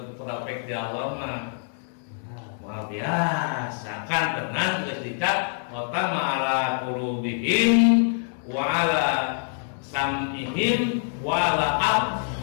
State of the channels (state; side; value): silent; right; digital silence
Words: taufik di Allah mah luar biasa kan tenang geus dicap wa ala qulubihim wa ala sam'ihim wa ala